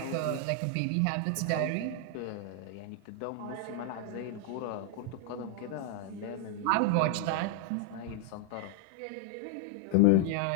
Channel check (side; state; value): both; different; correlation 0.00